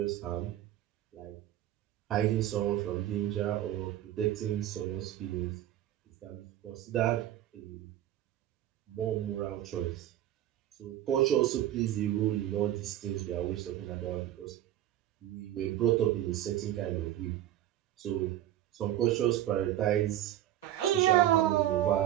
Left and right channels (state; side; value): quieter; left; 12.8 dB